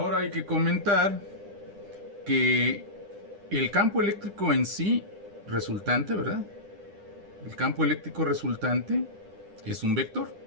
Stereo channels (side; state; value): left; late; 9.9 ms